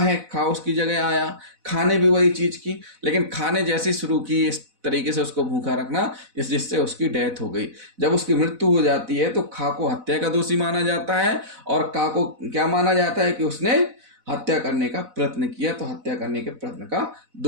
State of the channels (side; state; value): left; late; 4.0 ms